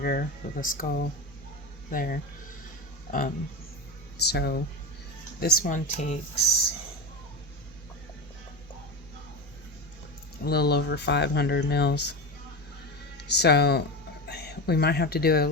with a skull there. So this one takes a little over 500 mils. So we might have to do it a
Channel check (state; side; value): normal; both; correlation 0.22